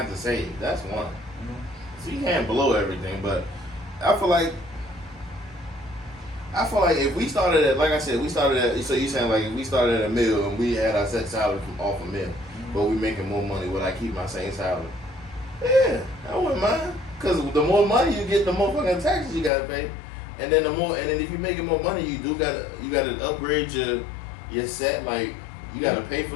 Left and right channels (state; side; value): drops out; right; at 19.5 s